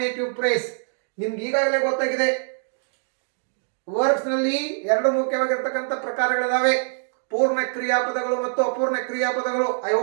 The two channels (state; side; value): silent; left; digital silence